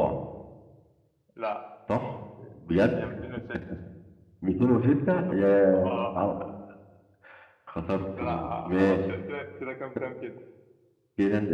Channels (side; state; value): both; identical; correlation 1.00